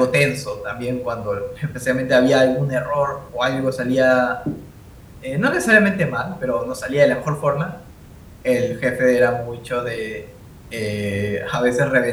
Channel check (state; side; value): identical; both; correlation 1.00